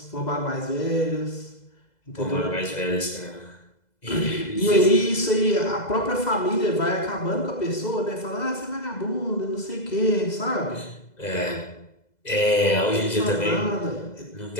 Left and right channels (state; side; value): late; right; 2.0 ms